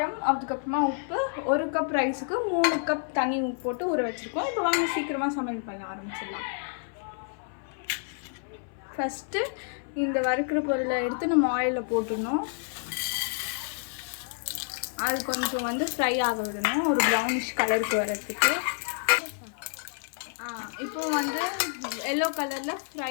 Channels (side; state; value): right; silent; 56 dB below the other